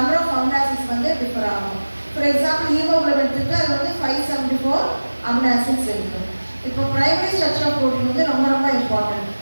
of amino acids differ ஆகும். For example, hemoglobin எடுத்துக்கிட்டா அது 574 amino acids இருக்கு. இப்போ பிரைமரி ஸ்ட்ரக்சர் ஆஃப் ப்ரோட்டீன் ரொம்ப ரொம்ப இம்பார்ட்டன்ட்.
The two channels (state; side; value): inverted; both; correlation -1.00